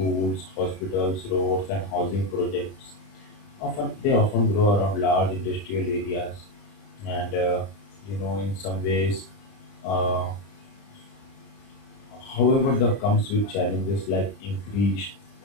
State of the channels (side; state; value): right; late; 30 ms